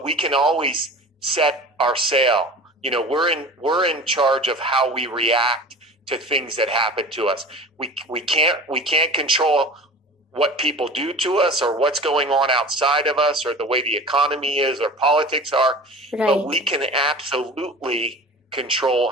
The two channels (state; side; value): normal; both; correlation 0.37